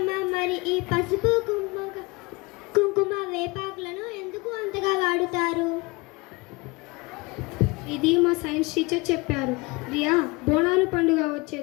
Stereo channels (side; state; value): right; quieter; 25.3 dB